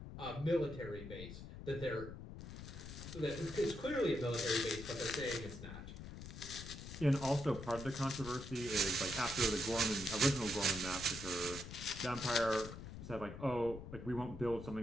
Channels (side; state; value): left; noise; rumble, 10 dB below the sound